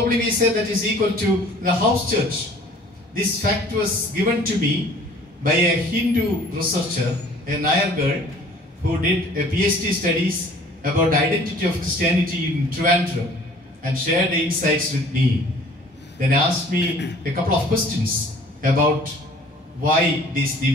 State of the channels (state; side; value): normal; both; correlation 0.52